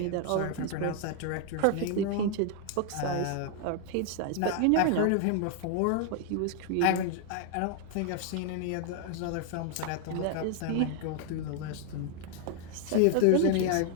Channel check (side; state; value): both; different; correlation 0.00